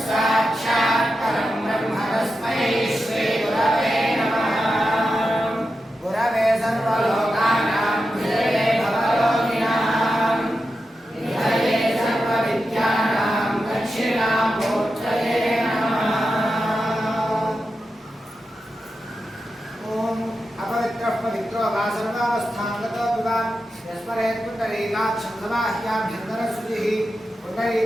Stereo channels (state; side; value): normal; both; correlation 0.90